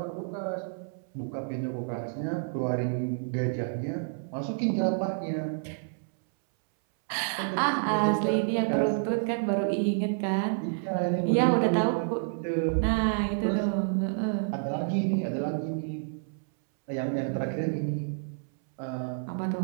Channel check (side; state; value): left; silent; 59 dB below the other